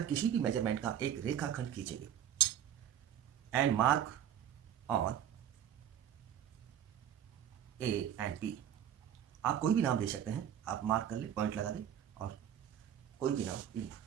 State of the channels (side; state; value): left; quieter; 10.1 dB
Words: किसी भी मेजरमेंट का एक रेखाखंड खींचेंगे and mark on A and B. आप कोई भी नाम दे सकते हैं, आप मार्क कर ले, पॉइंट लगा दें और कोई भी नाम इन